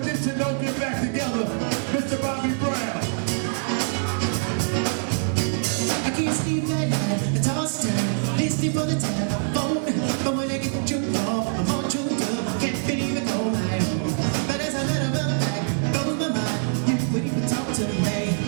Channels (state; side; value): silent; left; digital silence